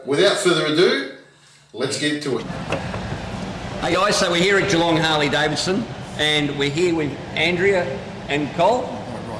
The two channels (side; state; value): both; identical; correlation 1.00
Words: without further ado, let's get to it. Hey guys, so we're here at Geelong Harley Davidson and we're here with Andrea and Col.